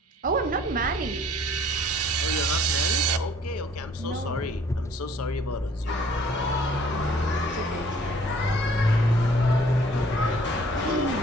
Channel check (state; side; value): normal; both; correlation 0.57